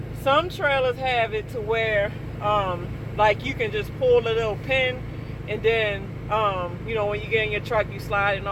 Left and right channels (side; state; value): both; identical; correlation 1.00